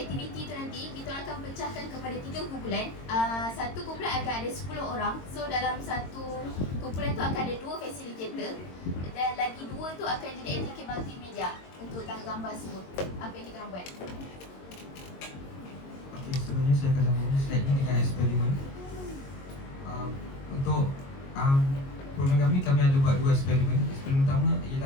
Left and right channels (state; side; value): late; right; 22 ms